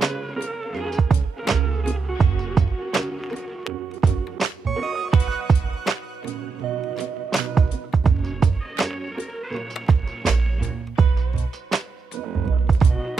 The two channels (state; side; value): quieter; left; 4.4 dB